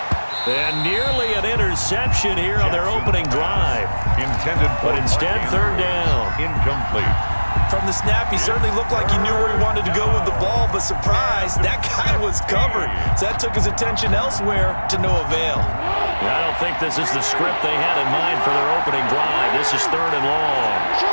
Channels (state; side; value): inverted; both; correlation -1.00